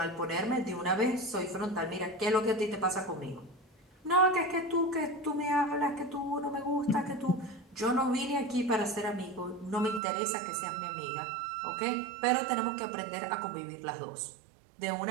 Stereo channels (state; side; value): drops out; left; at 10.0 s